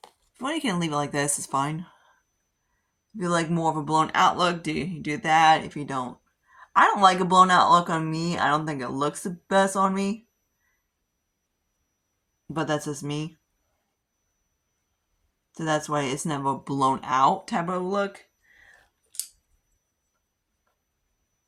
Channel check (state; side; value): identical; both; correlation 1.00